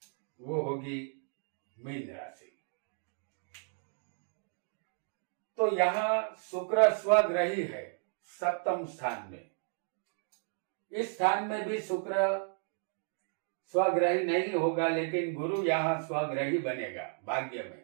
वो होगी मीन राशि। तो यहाँ शुक्र स्वग्रही है सप्तम स्थान में। इस स्थान में भी शुक्र स्वग्रही नहीं होगा, लेकिन गुरु यहाँ स्वग्रही बनेगा भाग्य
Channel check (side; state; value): left; silent; 56 dB below the other